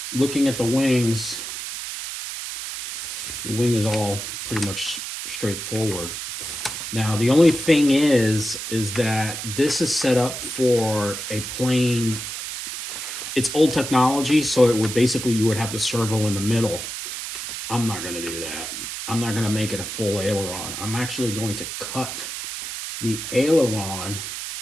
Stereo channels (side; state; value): right; noise; hiss, 6 dB below the sound